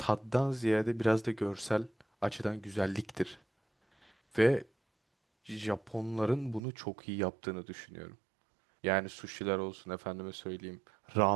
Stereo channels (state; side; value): drops out; left; at 6.6 s